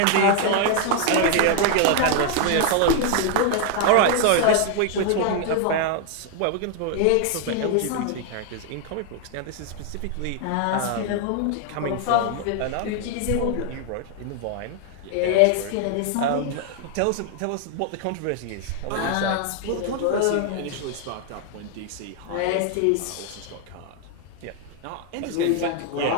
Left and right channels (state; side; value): different; both; correlation 0.00